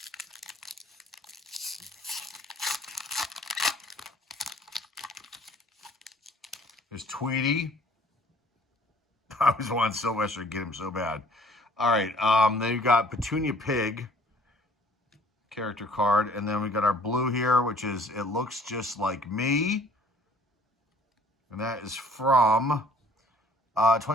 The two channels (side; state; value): both; normal; correlation 0.56